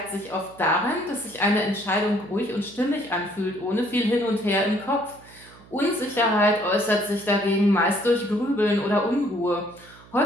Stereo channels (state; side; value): noise; right; hum, 23 dB below the sound